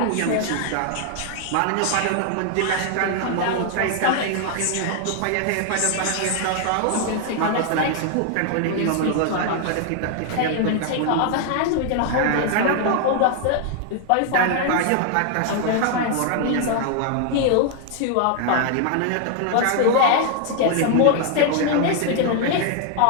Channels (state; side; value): different; both; correlation 0.00